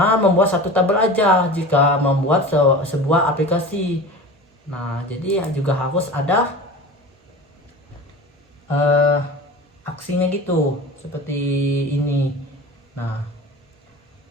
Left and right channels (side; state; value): both; normal; correlation 0.34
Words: membuat satu tabel aja jika membuat sebuah aplikasi. Nah, jadi juga harus ada aksinya gitu, seperti ini. Nah,